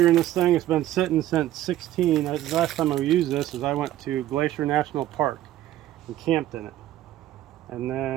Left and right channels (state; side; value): quieter; left; 13.8 dB